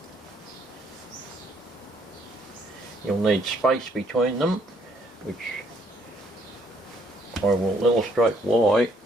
You'll need space between them, which I will illustrate why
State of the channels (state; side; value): normal; both; correlation 0.67